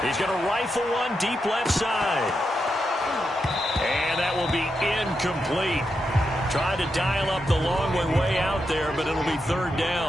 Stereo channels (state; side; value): normal; both; correlation 0.85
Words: He's going to rifle one deep left side. And that will be incomplete. Tried to dial up the long one way out there, but it'll be 3rd